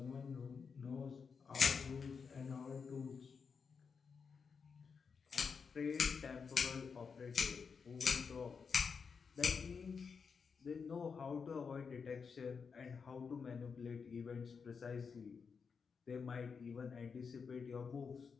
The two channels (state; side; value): quieter; right; 5.7 dB